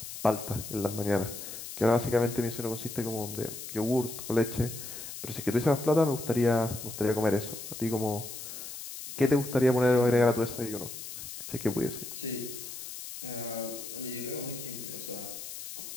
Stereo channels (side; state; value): left; noise; hiss, 10 dB below the sound